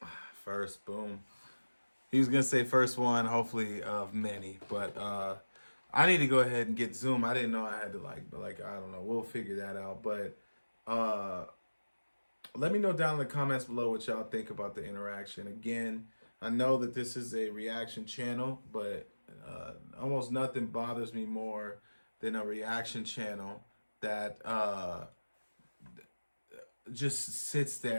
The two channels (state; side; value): inverted; both; correlation -1.00